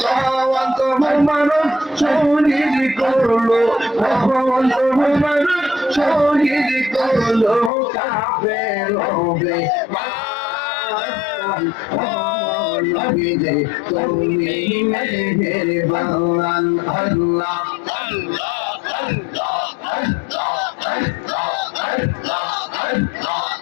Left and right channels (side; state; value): right; drops out; at 7.7 s